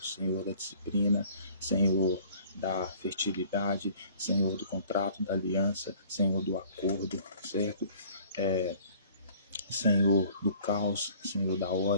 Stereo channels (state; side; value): inverted; both; correlation -0.53